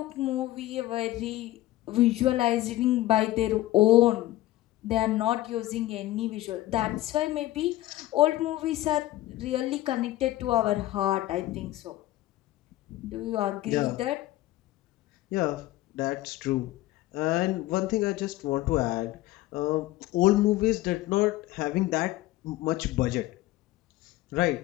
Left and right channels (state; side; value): quieter; right; 16.2 dB